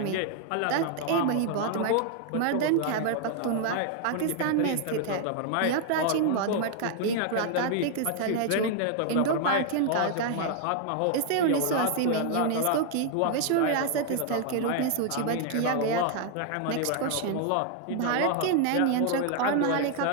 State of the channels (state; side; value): different; both; correlation 0.00